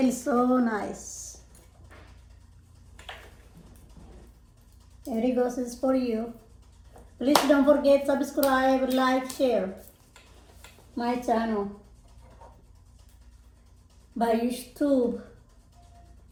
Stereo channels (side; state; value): both; identical; correlation 1.00